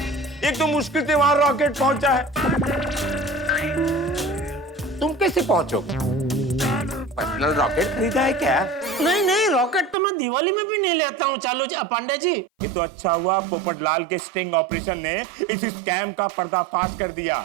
एक तो मुश्किल से वहां रॉकेट पहुंचा है, तुम कैसे पहुंचोगे? पर्सनल रॉकेट खरीदा है क्या? नहीं, रॉकेट तो मैं दिवाली में भी नहीं लेता हूँ चालू जी, पांडे जी। ये तो अच्छा हुआ पोपटलाल के स्टिंग ऑपरेशन ने इस स्कैम का पर्दाफाश कर दिया,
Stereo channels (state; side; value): drops out; left; at 10.0 s